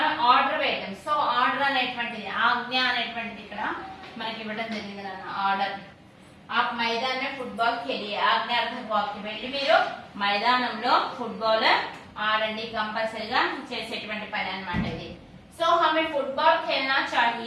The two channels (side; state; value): both; identical; correlation 1.00